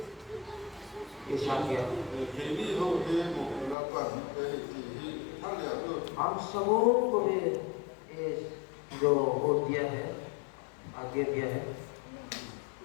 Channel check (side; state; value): right; drops out; at 3.8 s